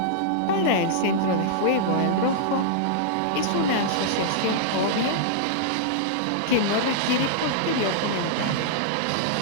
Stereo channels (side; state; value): both; different; correlation -0.02